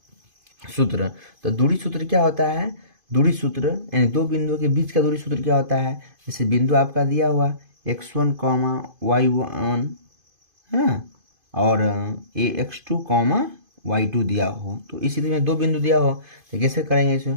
सूत्र। तो दूरी सूत्र क्या होता है, दूरी सूत्र यानी दो बिंदुओं के बीच का दूरी सूत्र क्या होता है। जैसे बिंदु आपका दिया हुआ x1 y1 है और x2 y2 दिया हो, तो इसी तरह में दो बिंदु दिया हो तो कैसे करेंगे इसे,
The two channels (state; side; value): late; left; 2.5 ms